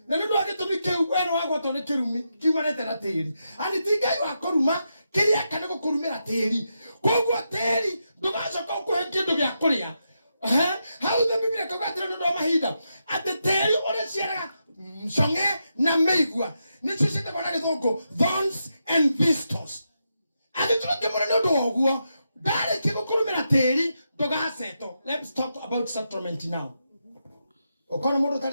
na nĩ ũndũ wa gĩtũmi kĩu we nĩ wagwatwo nĩ kĩrumi kiumanĩte na tĩri ani ti Ngai wa kũruma kĩrĩa kana gũkũrumĩra tĩri koguo tĩri ndũgacoka ũkũhe kĩndũ gĩa kũrĩa Hau the Biblia kokatira ndo mahinda ate teri ore ciara songe na meigua nicio cite bana githongo thorns and thistles ate tuke mwana ndo oguo dare kigukurumira teri dogaseto. Let's talk about settlement now. Okona mundu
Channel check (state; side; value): inverted; both; correlation -0.85